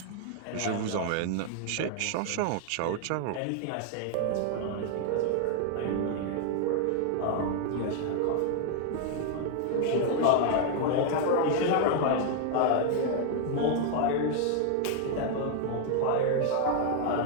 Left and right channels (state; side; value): different; both; correlation 0.00